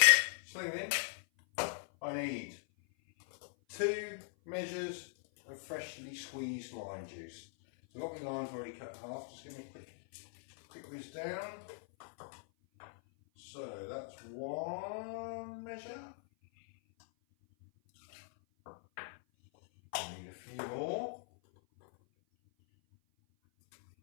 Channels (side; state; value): right; silent; 51 dB below the other